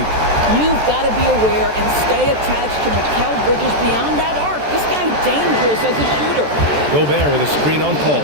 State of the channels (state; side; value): late; left; 14 ms